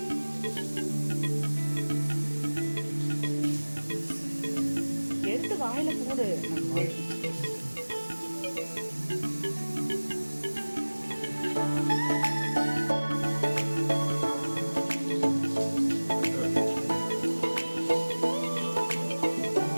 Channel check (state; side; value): inverted; both; correlation -1.00